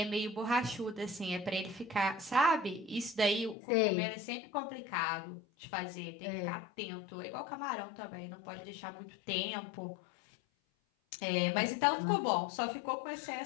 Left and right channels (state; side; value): drops out; right; at 3.6 s